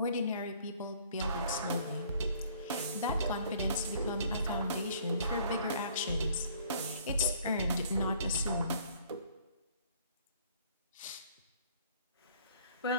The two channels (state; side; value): inverted; both; correlation -0.57